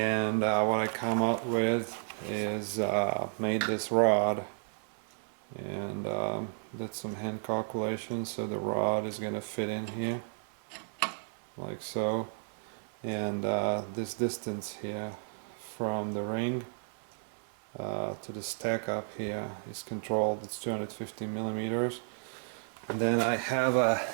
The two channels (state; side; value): silent; left; 56 dB below the other